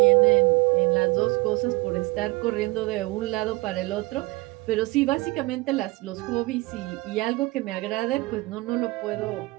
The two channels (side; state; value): left; quieter; 22.8 dB